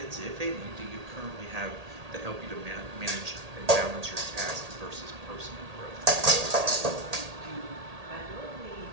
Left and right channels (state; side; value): late; left; 1.8 ms